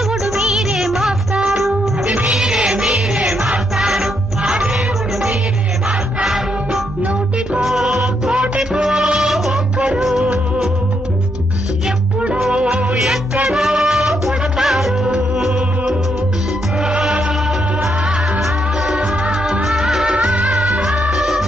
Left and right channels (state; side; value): normal; both; correlation 0.77